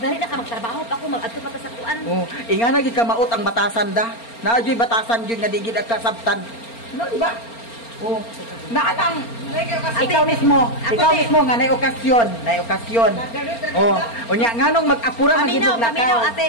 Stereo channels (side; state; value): right; late; 4.3 ms